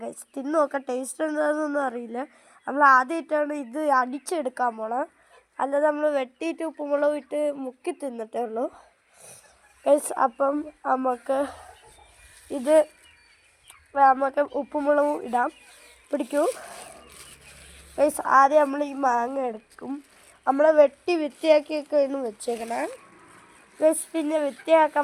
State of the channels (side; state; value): both; identical; correlation 1.00